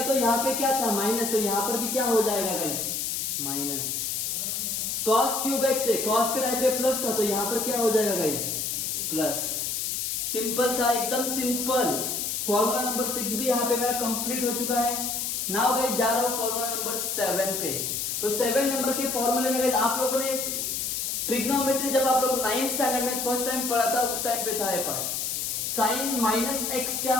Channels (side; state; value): left; noise; hiss, 1 dB below the sound